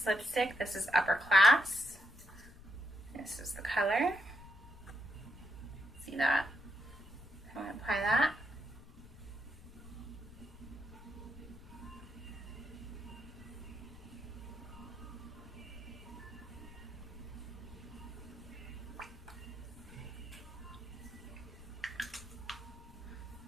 lipstick. This is Upper Class. This is the color. See that? I'm going to apply that.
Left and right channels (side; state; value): left; noise; rumble, 17 dB below the sound